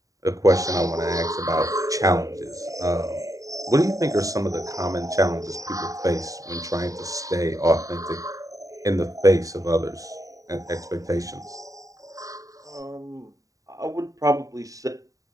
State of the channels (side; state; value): left; late; 0.16 ms